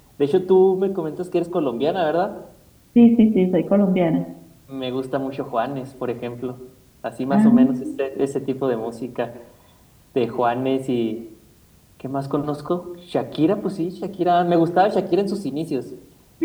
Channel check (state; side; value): identical; both; correlation 1.00